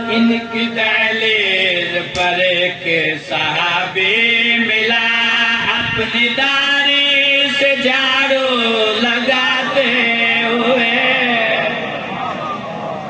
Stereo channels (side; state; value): both; identical; correlation 1.00